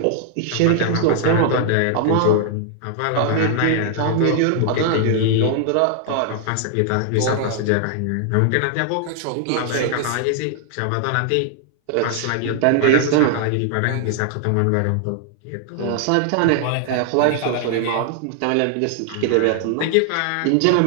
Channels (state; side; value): different; both; correlation 0.00